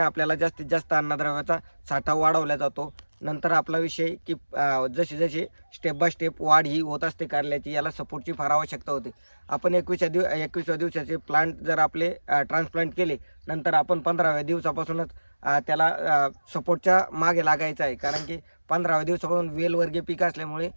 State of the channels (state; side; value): inverted; both; correlation -1.00